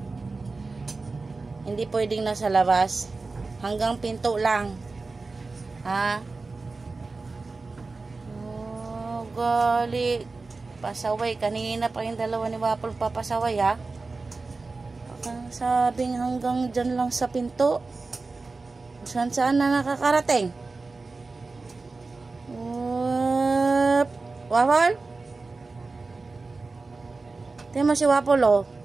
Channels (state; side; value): quieter; left; 3.8 dB